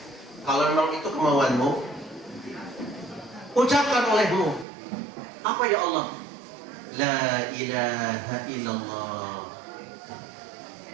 ucapkan olehmu. Apa ya Allah? La ilaha illallah.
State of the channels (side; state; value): left; drops out; at 4.7 s